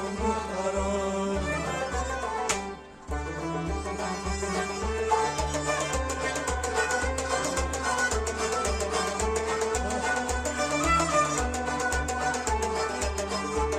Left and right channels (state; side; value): identical; both; correlation 1.00